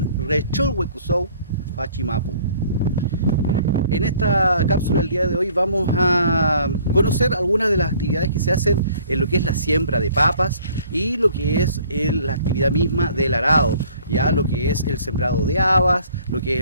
rechol huecusou, fachimapu. En esta cápsula del día de hoy vamos a conocer algunas de las actividades que se hacen en lo que es la siembra de papas y lo que es la actividad misma del arado, ya lo que es el sembrado de habas, lo que es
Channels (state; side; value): inverted; both; correlation -0.56